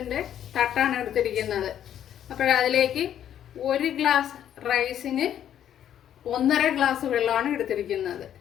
തട്ടാണ് എടുത്തിരിക്കുന്നത്. അതിലേക്ക് 1 ഗ്ലാസ് റൈസിന് 1.5 ഗ്ലാസ് വെള്ളമാണ് എടുത്തിരിക്കുന്നത്.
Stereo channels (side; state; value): right; quieter; 10.3 dB